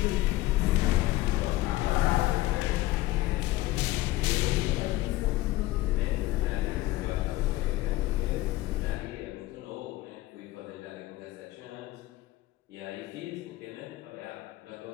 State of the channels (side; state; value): right; quieter; 17.5 dB